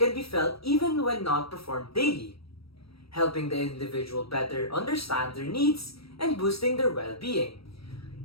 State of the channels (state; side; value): late; right; 0.76 ms